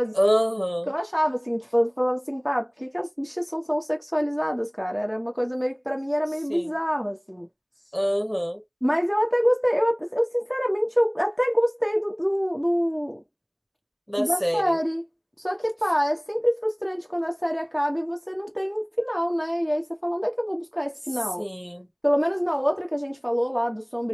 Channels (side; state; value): both; identical; correlation 1.00